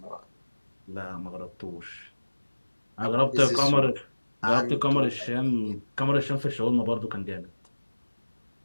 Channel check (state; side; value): inverted; both; correlation -1.00